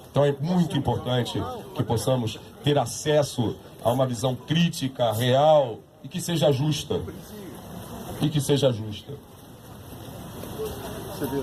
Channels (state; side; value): identical; both; correlation 1.00